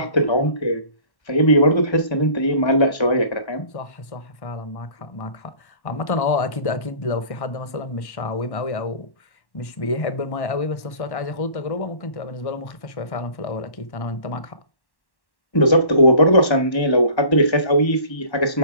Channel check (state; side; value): late; right; 1.1 ms